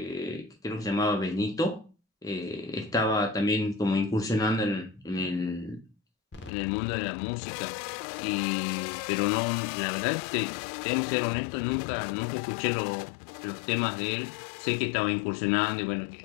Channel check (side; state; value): right; drops out; at 6.5 s